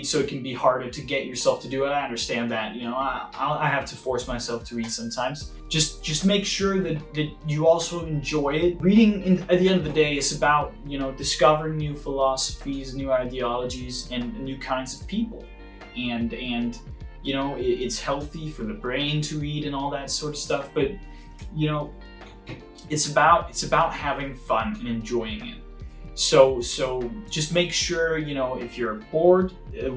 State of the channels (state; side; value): identical; both; correlation 1.00